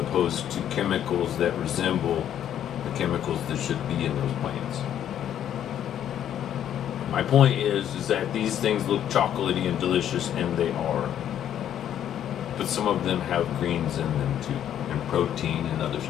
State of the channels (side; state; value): right; quieter; 10.3 dB